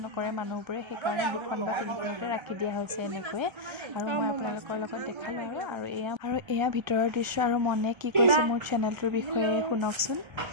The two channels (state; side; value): late; left; 1.3 ms